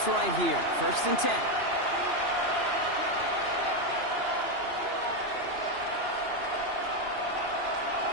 right here. First and 10.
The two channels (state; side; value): late; left; 2.9 ms